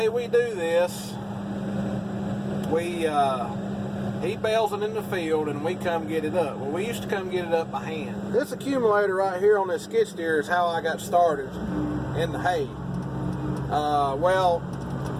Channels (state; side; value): identical; both; correlation 1.00